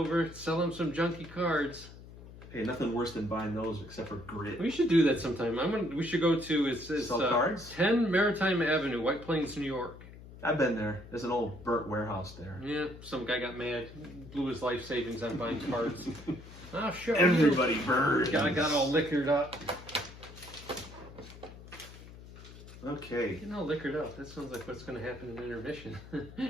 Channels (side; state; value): left; noise; hum, 17 dB below the sound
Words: sell them some junky cards. Hey, nothing worse than buying those except for grit. We should do that sometime. We should go to it's Sell cards? 10 Maritime Avenue, White Plains, New York. I've been there. There's an old burnt warehouse there. Yeah, some guy got mad, blew his life savings on buying cards. Oh, sure. Everybody burns. Guy got all liquored up. Okay. Getting all liquored up. That sounds like what's going to happen in intermission.